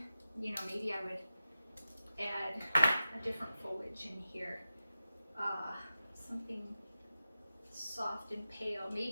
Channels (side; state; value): both; inverted; correlation -0.93